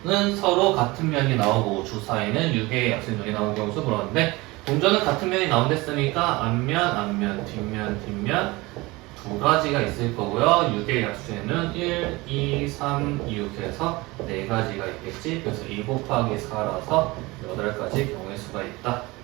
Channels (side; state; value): left; quieter; 22.2 dB